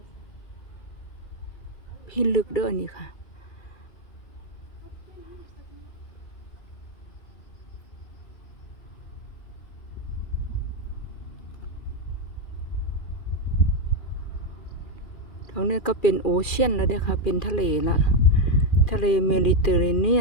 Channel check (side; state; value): right; late; 2.4 ms